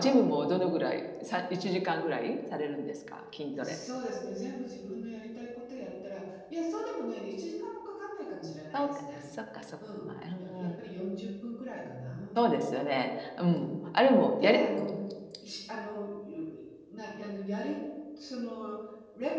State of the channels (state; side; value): identical; both; correlation 1.00